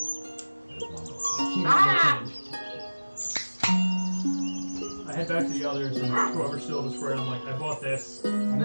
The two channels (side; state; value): both; inverted; correlation -1.00